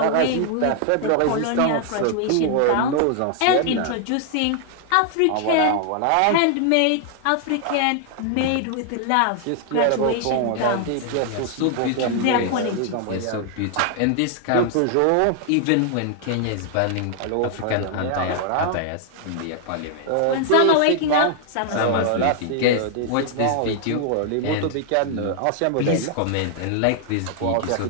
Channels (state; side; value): different; both; correlation 0.00